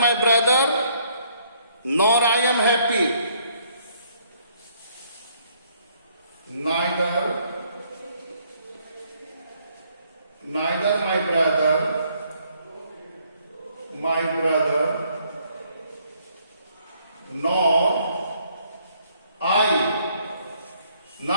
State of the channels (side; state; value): both; inverted; correlation -0.67